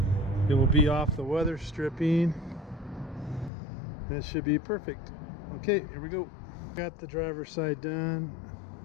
It will be off the weather stripping, and it should be perfect. Okay, here we go. Got the driver's side done.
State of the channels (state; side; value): drops out; right; at 3.5 s